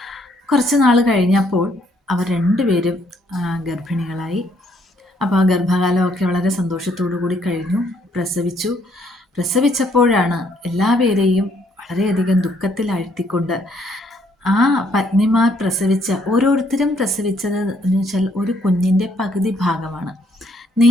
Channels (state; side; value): normal; both; correlation 0.68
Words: കുറച്ച് നാൾ കഴിഞ്ഞപ്പോൾ അവർ 2 പേരും ഗർഭിണികളായി. അപ്പോൾ ആ ഗർഭകാലമൊക്കെ വളരെ സന്തോഷത്തോടു കൂടി കഴിഞ്ഞു. പ്രസവിച്ചപ്പോഴാണ് എല്ലാവരെയും വളരെയധികം ദുഃഖത്തിലാഴ്ത്തിക്കൊണ്ട് ആ പത്നിമാർ ഓരോരുത്തരും പ്രസവിച്ചത് എന്ന് വെച്ചാൽ ഒരു കുഞ്ഞിൻ്റെ പകുതി ഭാഗമാണ്,